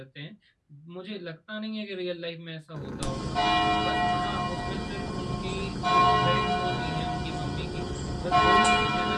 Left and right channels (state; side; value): identical; both; correlation 1.00